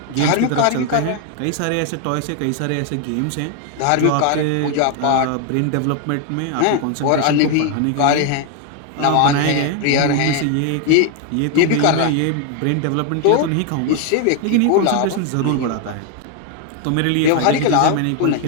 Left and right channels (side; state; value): both; different; correlation 0.01